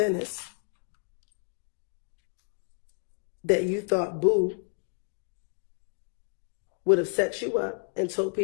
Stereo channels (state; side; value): silent; right; 58 dB below the other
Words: that you thought Boo would have set you up and told